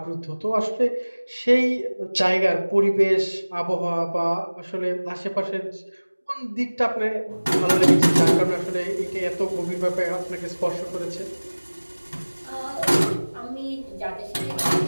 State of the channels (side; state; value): both; inverted; correlation -1.00